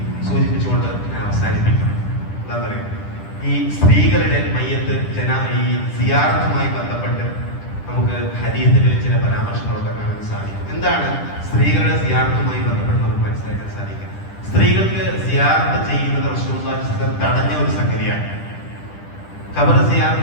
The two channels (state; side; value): late; right; 10 ms